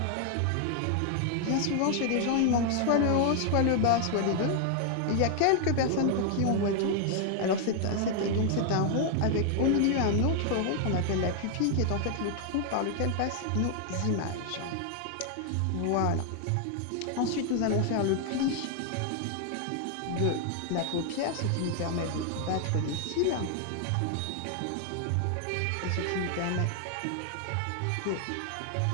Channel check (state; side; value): different; both; correlation 0.00